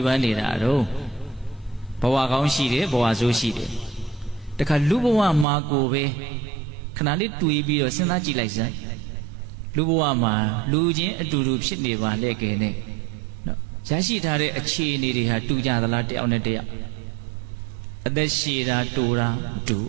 ဖန်နေတာတော့ဘဝကောင်းရှိတယ်ဘဝဆိုးရှိတယ်တခါလူဘဝမှာကိုပဲခဏလေးတွေးပြီးတော့စဉ်းစားကြည့်လိုက်စမ်းလူဘဝမှာလူချင်းအတူတူဖြစ်နေပါလေကဲနဲ့နော်ရရှိထားတဲ့အခြေအနေတွေဟာတူကြသလားတယောက်နဲ့တယောက်အသက်ရှည်တာတူတာမတူဘ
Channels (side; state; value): left; drops out; at 5.5 s